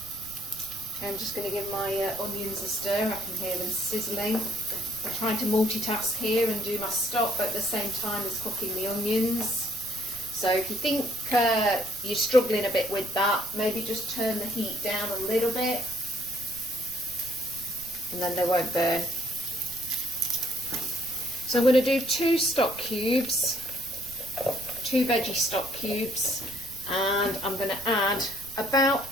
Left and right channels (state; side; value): noise; right; rumble, 18 dB below the sound